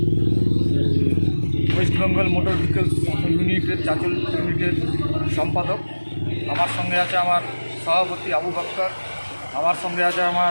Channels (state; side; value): inverted; both; correlation -1.00